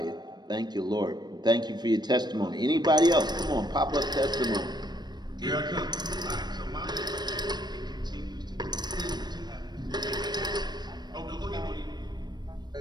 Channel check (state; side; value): late; left; 0.21 ms